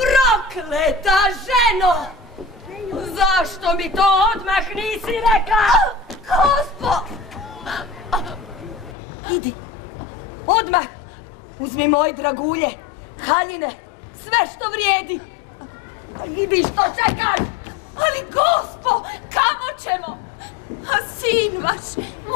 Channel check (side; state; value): right; drops out; at 9.0 s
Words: ženo! Zašto mi to odmah nisi rekla? Gospo! Idi, odmah uzmi moje dragulje, haljine, sve što vrijedi. Idi, što čekaš? Ali gospo, kamo ćemo? A sin vaš,